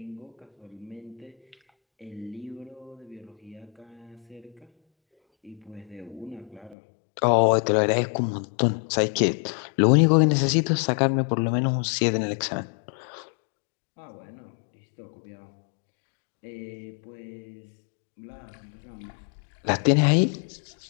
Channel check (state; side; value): drops out; right; at 6.8 s